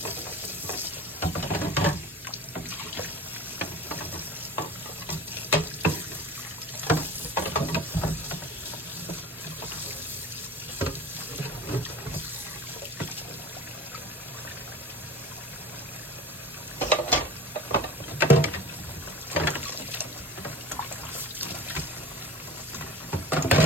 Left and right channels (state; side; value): normal; both; correlation 0.38